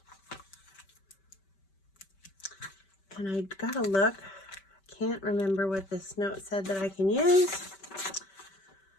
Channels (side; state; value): right; late; 5.2 ms